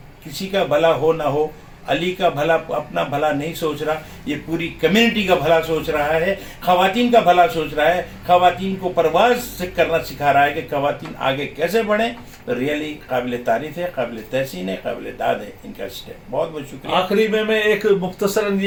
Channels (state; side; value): identical; both; correlation 1.00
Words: کسی کا بھلا ہو نہ ہو, علی کا بھلا اپنا بھلا نہیں سوچ رہا, یہ پوری کمیونٹی کا بھلا سوچ رہا ہے, خواتین کا بھلا سوچ رہا ہے, خواتین کو پرواز سے کرنا سکھا رہا ہے کہ خواتین آگے کیسے بڑھیں. ریئلی قابل تعریف ہے, قابل تحسین ہے, قابل داد ہے ان کا اسٹیپ. بہت بہت شکریہ. آخری میں ایک مختصراً